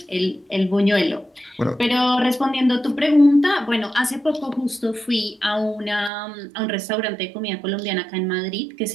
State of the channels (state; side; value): drops out; left; at 6.1 s